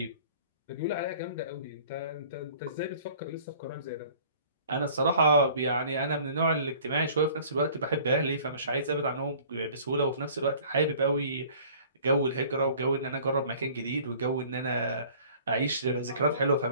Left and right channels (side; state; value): both; inverted; correlation -0.50